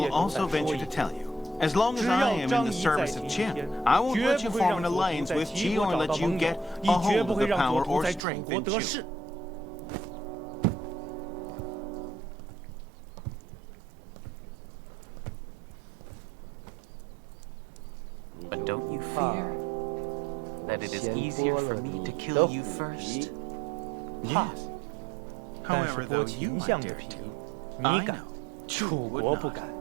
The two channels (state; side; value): drops out; left; at 8.2 s